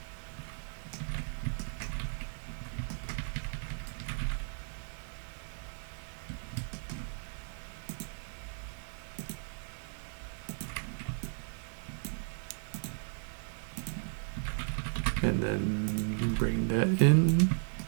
And then bring that in.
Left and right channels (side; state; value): left; silent; 54 dB below the other